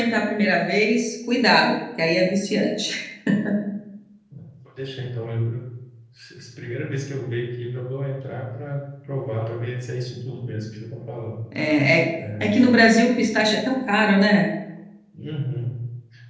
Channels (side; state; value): both; identical; correlation 1.00